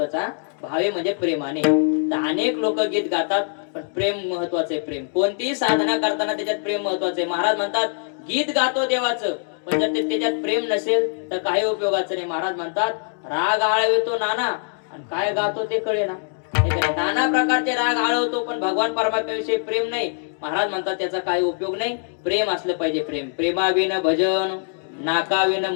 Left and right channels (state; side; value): silent; right; 60 dB below the other